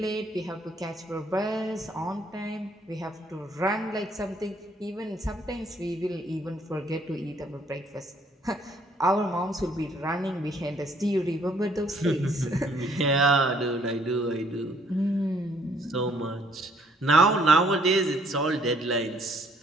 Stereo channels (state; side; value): normal; both; correlation 0.64